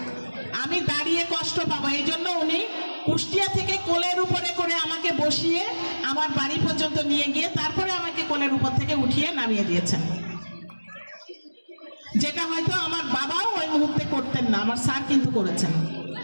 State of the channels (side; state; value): both; inverted; correlation -1.00